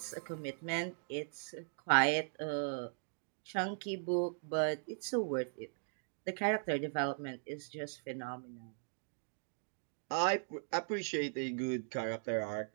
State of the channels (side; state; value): left; silent; digital silence